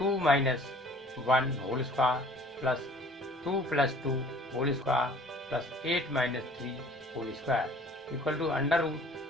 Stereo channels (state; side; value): normal; both; correlation 0.51